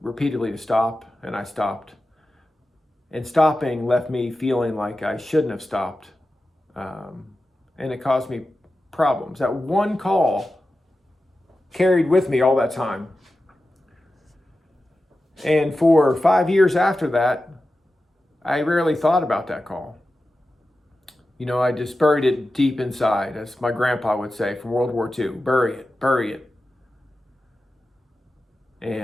repeatedly to stop, and I stopped. And stopping left me feeling like I shouldn't have stopped. And it caused me problems. That one call carried with me all that time. And for 5 years after that, I rarely thought about that call. You know, I just buried it deep inside, as my grandpa would say from World War II. Bury it, bury it.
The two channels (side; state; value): both; normal; correlation 0.93